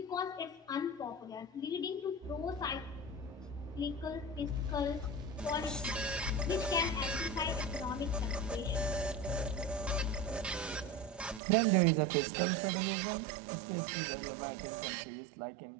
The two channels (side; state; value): left; drops out; at 11.4 s